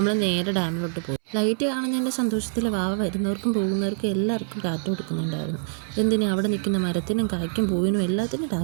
നേരെ ഡാമിലോട്ട് പോയി. ലൈറ്റ് കാണുന്നതിൻ്റെ സന്തോഷത്തിൽ വാവ വരുന്നവർക്കും പോകുന്നവർക്കും എല്ലാവർക്കും ടാറ്റ കൊടുക്കുന്നുണ്ടായിരുന്നു. എന്തിനും അവിടെ നിൽക്കുന്ന മരത്തിനും കായ്ക്കും പൂവിനും എല്ലാത്തിനും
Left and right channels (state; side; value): silent; left; 62 dB below the other